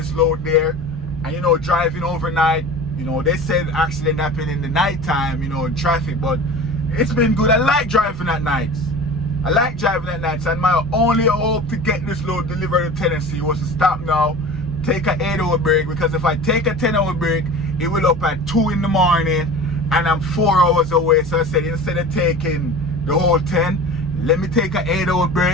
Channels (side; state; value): right; noise; rumble, 13 dB below the sound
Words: load there. And you know, driving overnight, you know, they said accident happened in the nighttime, you know, in traffic, but it's been good. I like driving at nights. I like driving at nights, and my only hope to get this load delivered to Tennessee was to stop now, take an 8-hour break, because if I take a 10-hour break, it will up at 2 in the morning, and I'm 4 hours away. So I said, instead of taking the whole 10, let me take an 8-hour